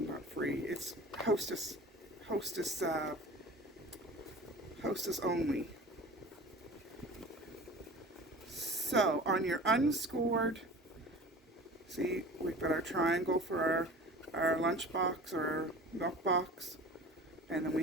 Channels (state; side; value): normal; both; correlation 0.39